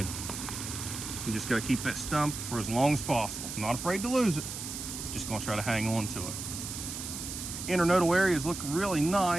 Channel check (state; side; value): noise; right; hiss, 7 dB below the sound